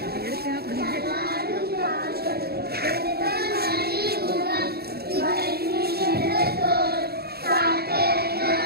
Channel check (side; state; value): left; late; 0.46 ms